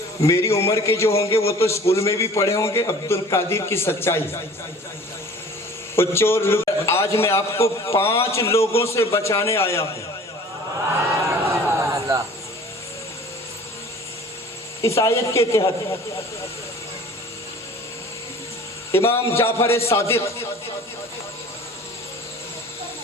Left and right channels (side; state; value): both; normal; correlation 0.46